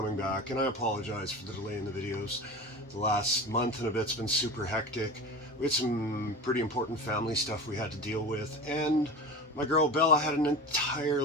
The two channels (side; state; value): both; normal; correlation 0.31